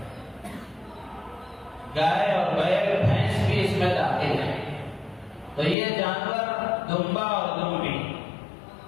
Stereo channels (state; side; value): drops out; right; at 5.8 s